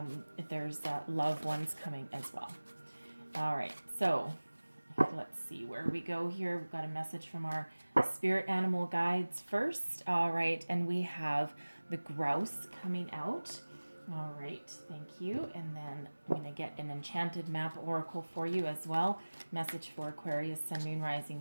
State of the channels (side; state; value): both; inverted; correlation -1.00